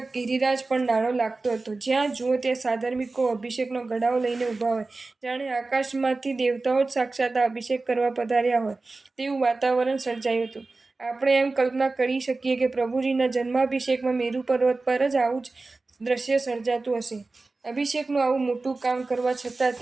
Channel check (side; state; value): left; quieter; 3.5 dB